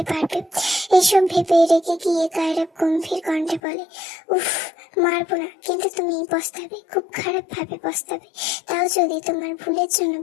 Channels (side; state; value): right; drops out; at 3.6 s